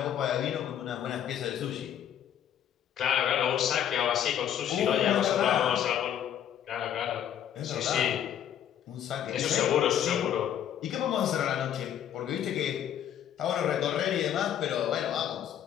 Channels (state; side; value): quieter; right; 10.0 dB